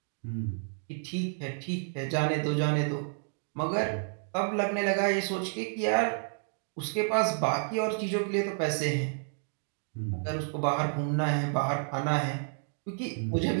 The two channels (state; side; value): silent; left; 57 dB below the other